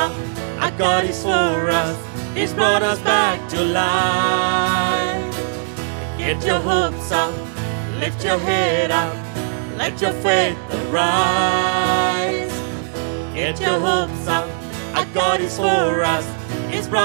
our God is for us, He's brought us back to life. Get your hopes up, lift your head up, let your faith arise. Get your hopes up, our God is for us, He's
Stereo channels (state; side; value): silent; left; digital silence